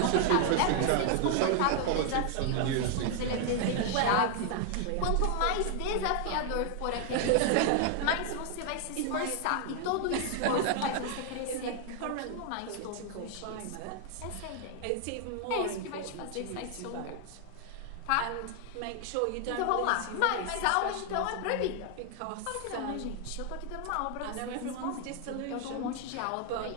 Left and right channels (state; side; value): different; both; correlation 0.00